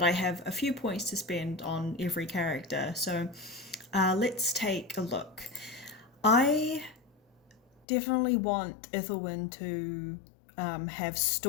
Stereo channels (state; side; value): drops out; right; at 7.8 s